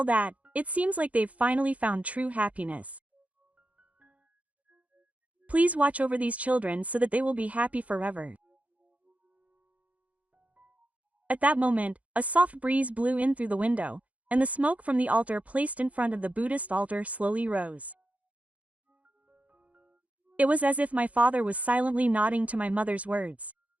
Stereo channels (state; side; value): late; left; 0.068 ms